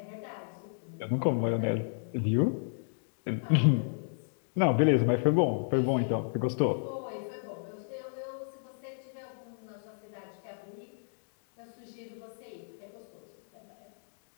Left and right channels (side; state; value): right; silent; digital silence